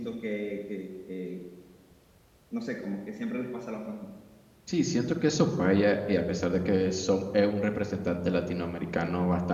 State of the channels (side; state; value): both; identical; correlation 1.00